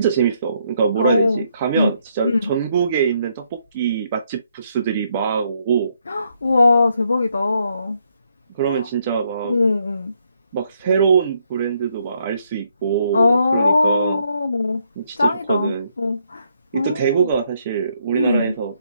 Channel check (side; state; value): both; inverted; correlation -0.73